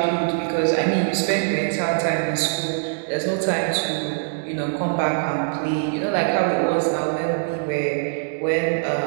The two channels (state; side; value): silent; left; digital silence